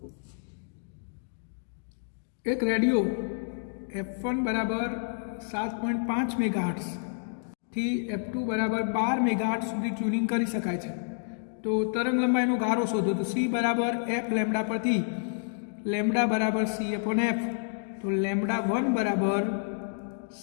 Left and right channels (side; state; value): right; silent; digital silence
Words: એક રેડિયો F1 બરાબર 7.5 મેગાહર્ટ્ઝ થી F2 બરાબર 12 મેગાહર્ટ્ઝ સુધી ટ્યુનિંગ કરી શકાય છે। તો તરંગલંબાઈનો ગારો શોધો। તો C બરાબર F લેમ્બડા પરથી લેમ્બડા બરાબર C/F, તો લેમ્બડા 1 બરાબર